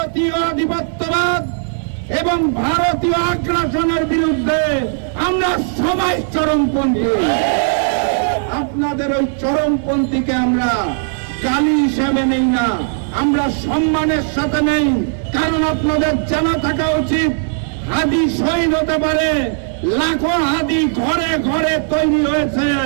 আধিপত্যবাদ এবং ভারতীয় আগ্রাসনের বিরুদ্ধে আমরা সবাই চরমপন্থী। আপনাদের ওই চরমপন্থীকে আমরা গালি হিসেবে নেই না, আমরা সম্মানের সাথে নেই। কারণ আপনাদের জানা থাকা উচিত হাদী শহীদ হতে পারে, লাখো হাদী ঘরে ঘরে তৈরি হয়েছে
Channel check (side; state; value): left; silent; digital silence